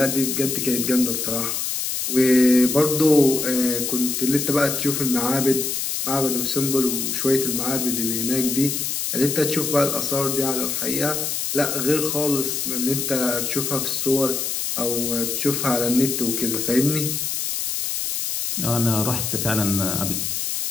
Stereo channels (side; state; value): left; noise; hiss, 2 dB below the sound